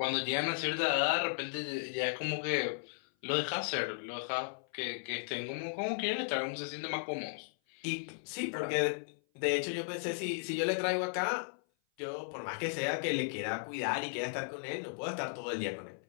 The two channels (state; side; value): silent; right; 54 dB below the other